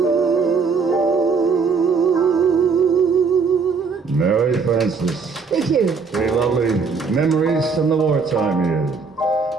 Mary Frances. Thank you. Very lovely memories from the wartime years.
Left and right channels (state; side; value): quieter; left; 5.1 dB